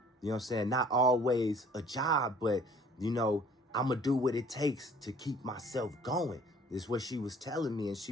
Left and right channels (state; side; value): normal; both; correlation 0.53